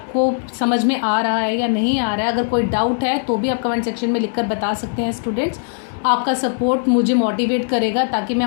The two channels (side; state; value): right; silent; 64 dB below the other